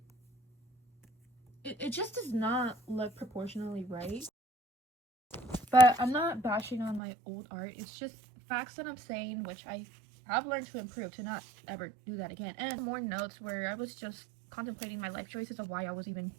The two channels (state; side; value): drops out; left; at 7.0 s